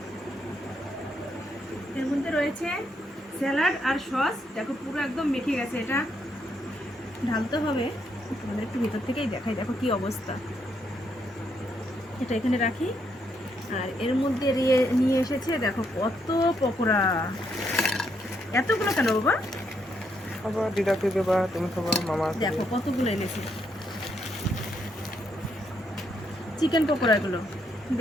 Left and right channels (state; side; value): normal; both; correlation 0.76